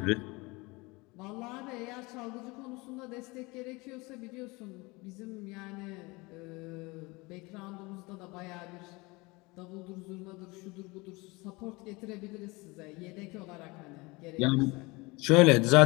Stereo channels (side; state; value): right; quieter; 24.5 dB